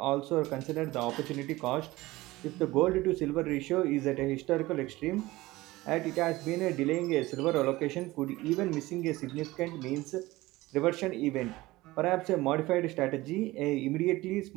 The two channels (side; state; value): left; quieter; 19.1 dB